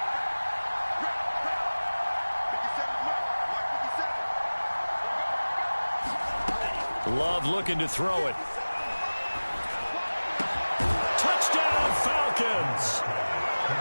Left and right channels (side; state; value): both; inverted; correlation -1.00